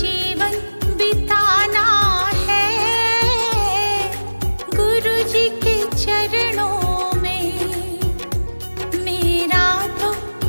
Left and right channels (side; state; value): both; inverted; correlation -1.00